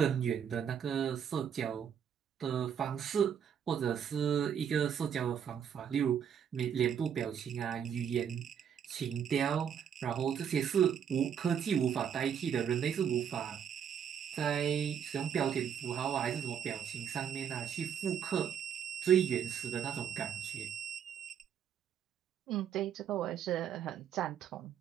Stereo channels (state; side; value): quieter; left; 8.2 dB